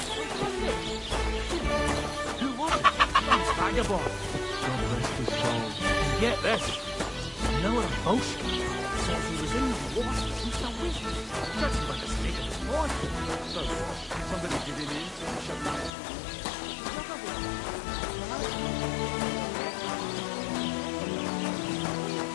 Get this. Noah Bosch says he was in the water since the week. Judging by the state of his voice. So, somebody give him in and shut him down.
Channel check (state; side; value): drops out; right; at 15.9 s